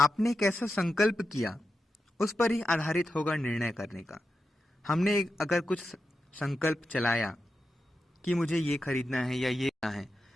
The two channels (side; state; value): both; normal; correlation 0.89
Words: कैसा संकल्प किया उस पर ही आधारित होगा निर्णय करने का। हमने अगर कुछ संकल्प चलाया कि मुझे ये खरीदना है या ये लेना है,